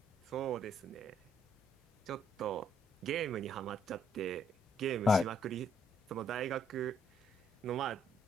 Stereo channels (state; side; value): normal; both; correlation 0.70